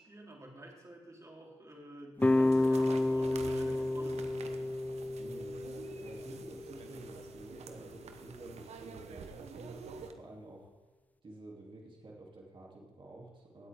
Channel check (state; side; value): normal; both; correlation 0.97